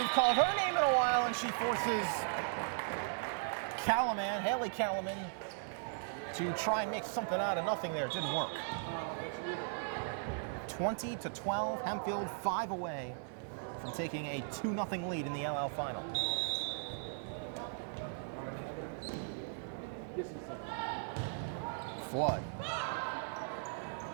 called her name in a while, and she forces Haley Calaman, to try and make something out of nothing there. It didn't work. 20-12, Hempfield 5 away from taking a 2-0 lead in the LL final. Flood.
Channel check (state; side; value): silent; left; 53 dB below the other